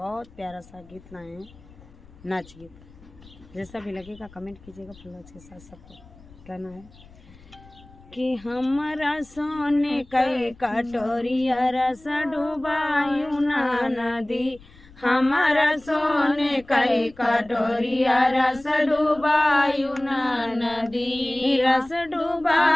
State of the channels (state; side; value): noise; left; rumble, 24 dB below the sound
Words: प्यारा सा गीत लाए हैं, नाच गीत। जैसा भी लगेगा कमेंट कीजिएगा। फुल के साथ सबको कहना है कि हमारा सोने कई कटोरिया रस डुबायु ना नदी, हमारा सोने कई कटोरिया रस डुबायु ना नदी, रस